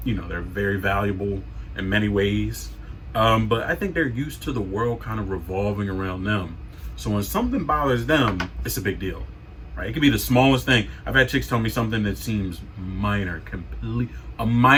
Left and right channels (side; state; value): both; identical; correlation 1.00